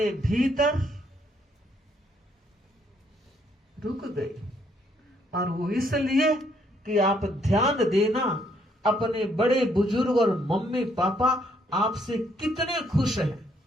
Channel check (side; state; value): both; normal; correlation 0.70